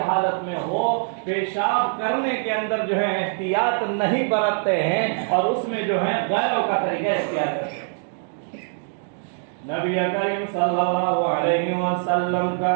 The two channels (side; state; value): left; silent; 63 dB below the other